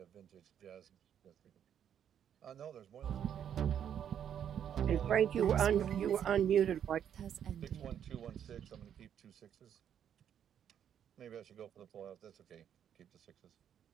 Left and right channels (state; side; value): quieter; left; 9.1 dB